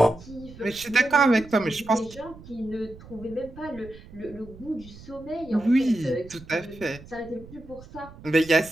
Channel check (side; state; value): right; noise; rumble, 19 dB below the sound